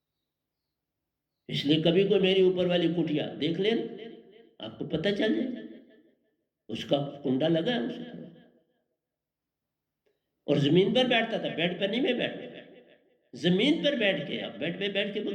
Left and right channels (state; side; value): identical; both; correlation 1.00